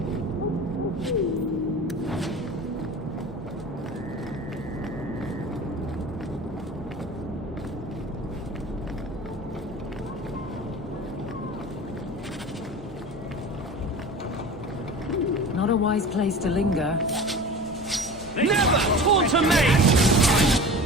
Not a wise place to linger. Never taunt a maid!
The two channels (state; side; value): normal; both; correlation 0.36